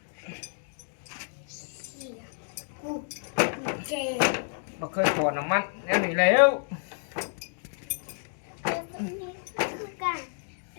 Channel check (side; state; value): right; silent; digital silence